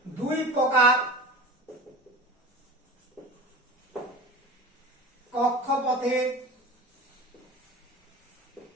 দুই প্রকার কক্ষপথের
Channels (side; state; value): both; normal; correlation 0.35